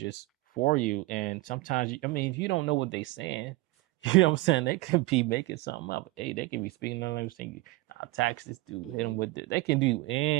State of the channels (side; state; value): left; quieter; 20.9 dB